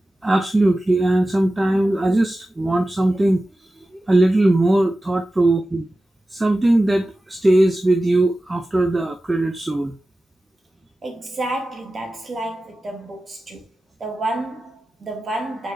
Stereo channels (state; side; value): normal; both; correlation 0.95